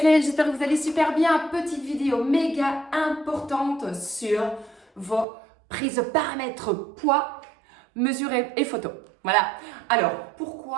j'espère que vous allez super bien. Petite vidéo méga importante sur vos prises de paramètres poids, mesure et photo. Voilà. Alors,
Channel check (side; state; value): left; drops out; at 5.2 s